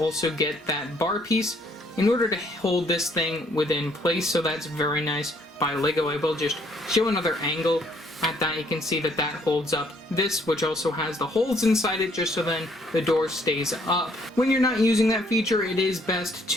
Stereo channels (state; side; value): normal; both; correlation 0.66